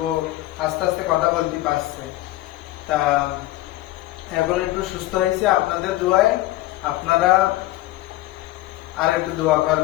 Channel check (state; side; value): quieter; right; 17.1 dB